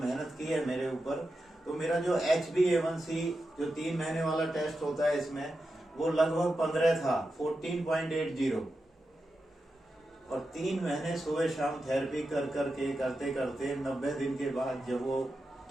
की है मेरे ऊपर। तो मेरा जो HbA1c जो 3 महीने वाला टेस्ट होता है इसमें, वो लगभग 15 था, 14.80। और 3 महीने सुबह शाम थेरेपी करते करते 90 दिन के बाद जब वो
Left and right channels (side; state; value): both; normal; correlation 0.89